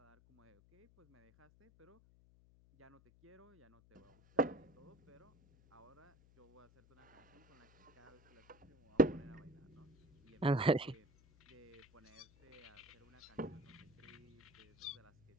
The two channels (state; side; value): noise; left; hum, 27 dB below the sound